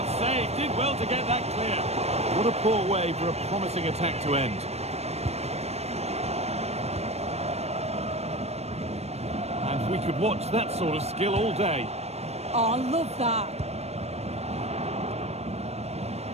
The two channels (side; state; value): left; late; 0.31 ms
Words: save. Did well to get that clear. What a poor way for a promising attack to end. And we could watch that sort of skill all day. Oh, I love that.